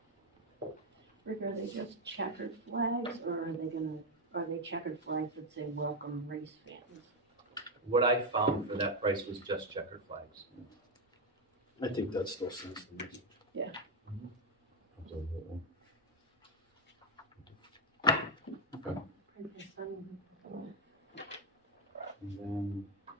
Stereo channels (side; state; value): both; normal; correlation 0.04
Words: Rick, are they just checkered flags, or are they checkered flags that say welcome race fans? What I found for that price was just checkered flags. I think that still sends the message. Absolutely. And then,